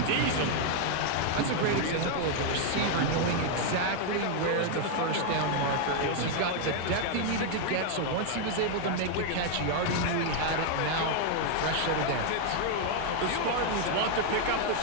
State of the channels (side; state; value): both; different; correlation 0.00